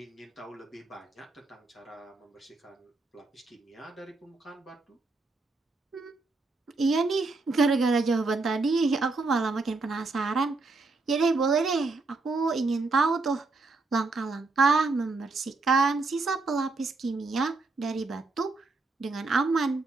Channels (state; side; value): quieter; left; 3.7 dB